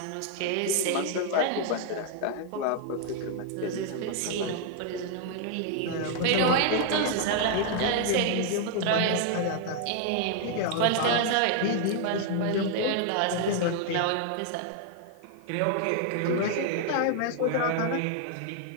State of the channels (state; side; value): different; both; correlation 0.00